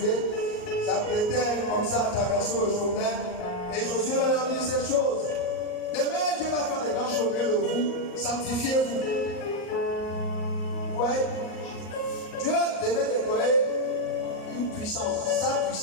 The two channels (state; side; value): late; right; 38 ms